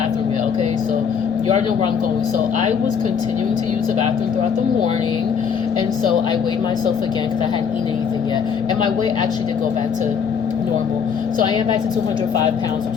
yet. Okay, so you already know where I'm going. So I was continuing to use the bathroom throughout the morning, and so I weighed myself again because I hadn't eaten anything yet, and my weight actually did go back to normal. So I am back to 205 pounds, which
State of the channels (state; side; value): quieter; right; 6.7 dB